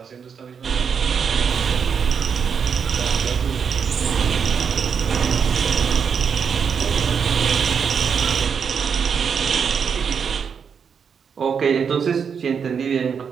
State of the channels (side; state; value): left; quieter; 6.7 dB